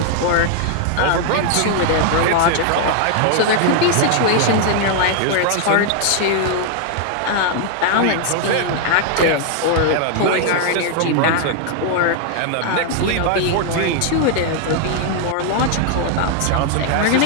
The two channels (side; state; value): both; different; correlation 0.00